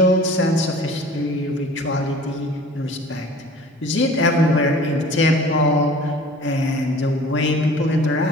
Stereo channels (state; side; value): normal; both; correlation 0.45